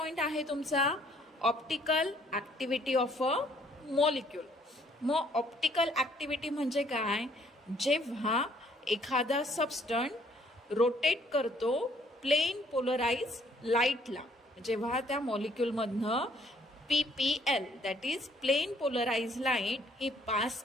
आहे तुमचा optical activity of a molecule. मग ऑप्टिकल ॲक्टिव्हिटी म्हणजे काय, जेव्हा एखादा सबस्टंट रोटेट करतो प्लेन पोलराइज लाईटला, जेव्हा त्या मॉलिक्यूलमधनं PPL that is plane polarise light ही पास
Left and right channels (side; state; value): both; normal; correlation 0.63